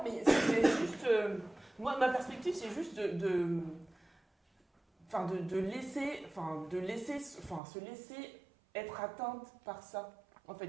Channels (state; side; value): drops out; left; at 7.6 s